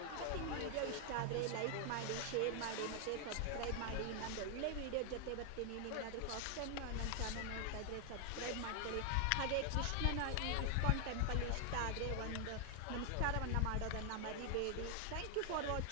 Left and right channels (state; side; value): different; both; correlation 0.00